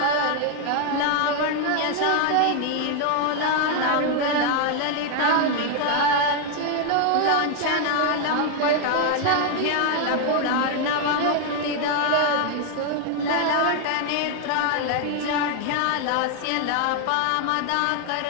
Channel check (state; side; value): different; both; correlation 0.00